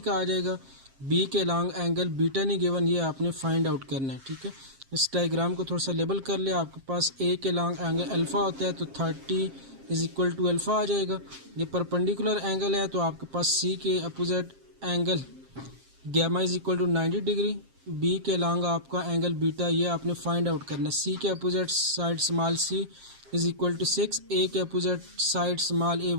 आ जाएगा। बी के लॉन्ग एंगल बीटा नहीं गिवन, ये आपने फाइंड आउट करना है। ठीक है, इस डायग्राम को थोड़ा सा लेबल कर ले। आपके पास ए के लॉन्ग एंगल अल्फ़ा होता है तो 30 इज इक्वल टू अल्फ़ा आ जाएगा। ये परपेंडिकुलर एंगल है तो आपके पास सी के opposite angle gamma is equal to 90 degree. B के लॉन्ग आपका एंगल बीटा, ये आपने फाइंड आउट करना है। सी के opposite side small C is equal to 6, A के अपोजिट साइड स्मॉल ए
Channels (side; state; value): left; late; 7.5 ms